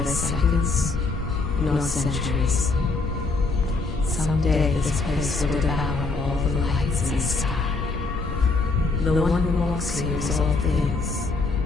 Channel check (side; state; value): right; quieter; 3.7 dB